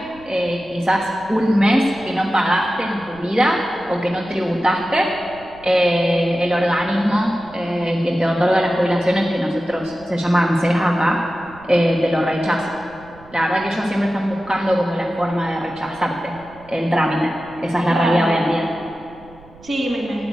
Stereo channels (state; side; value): noise; right; rumble, 23 dB below the sound